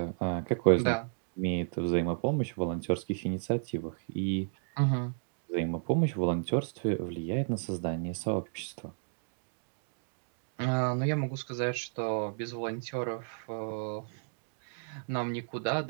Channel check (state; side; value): silent; left; digital silence